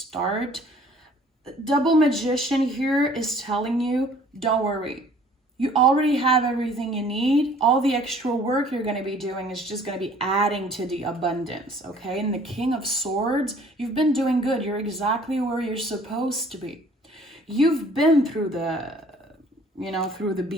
Double Magician here is telling you, don't worry. You already have everything you need. All the extra work you're going to be doing is just going to be adding to the abundance, okay? And the King of Swords, you've been doing good. You're exactly where you're supposed to be. You've been through the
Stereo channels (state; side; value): normal; both; correlation 0.55